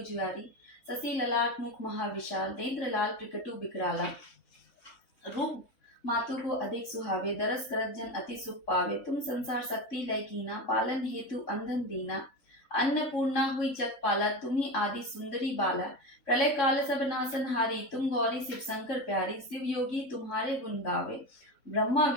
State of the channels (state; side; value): late; right; 3.7 ms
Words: ससी ललाट मुख महाविशाल, नेत्र लाल प्रकटु बिकराला। रूप मातु को अधिक सुहावे, दरस करत जन अति सुख पावे। तुम संसार शक्ति लय कीना, पालन हेतु अंधन दीना। अन्नपूर्णा हुई जग पाला, तुम्ही आदि सुंदरी बाला। प्रलय काल सब नासन हारी, तुम गौरी शिव शंकर प्यारी। शिव योगी तुम्हारे गुण गावे, ब्रह्मा